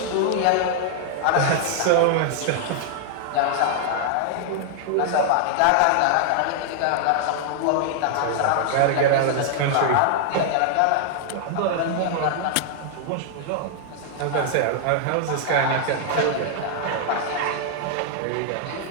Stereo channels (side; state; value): both; different; correlation 0.00